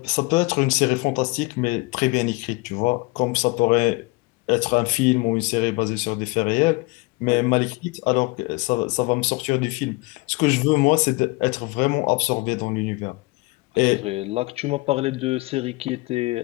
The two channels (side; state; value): right; quieter; 24.9 dB